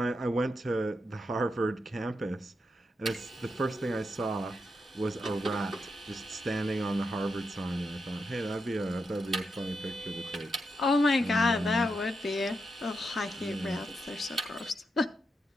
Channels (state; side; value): normal; both; correlation 0.84